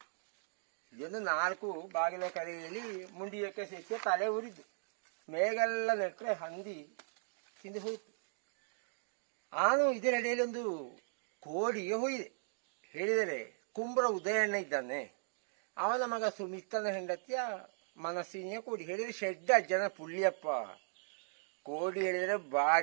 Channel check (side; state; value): left; silent; digital silence